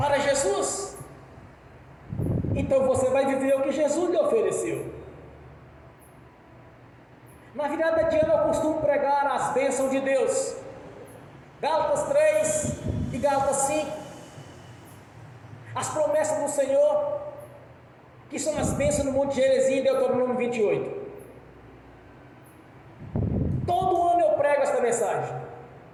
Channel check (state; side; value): identical; both; correlation 1.00